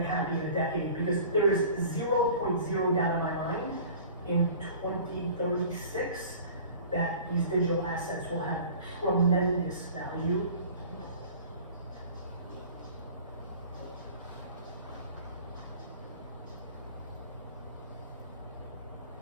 happy in a decade, because there is 0.0 doubt in my mind in 2036 that these digital assets will have tremendous value.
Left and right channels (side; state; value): both; inverted; correlation -0.44